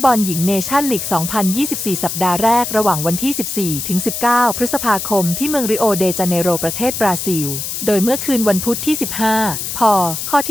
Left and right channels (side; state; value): left; noise; hiss, 5 dB below the sound